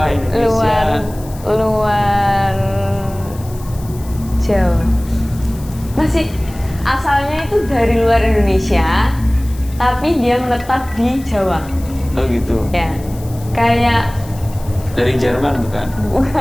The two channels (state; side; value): noise; left; hiss, 20 dB below the sound